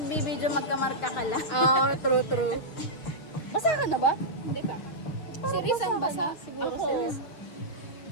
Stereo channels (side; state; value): right; late; 6.7 ms